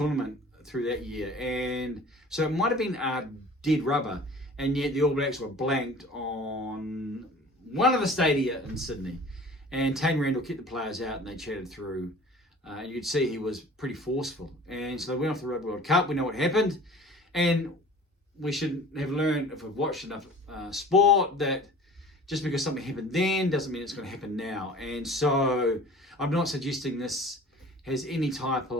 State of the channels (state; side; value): normal; both; correlation 0.44